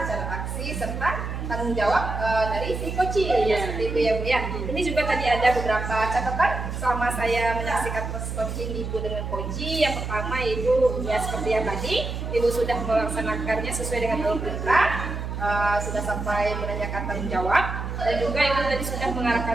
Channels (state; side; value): noise; right; hum, 5 dB below the sound